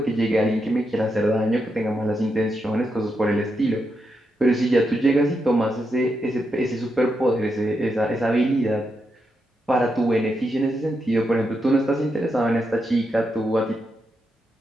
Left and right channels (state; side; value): normal; both; correlation 0.84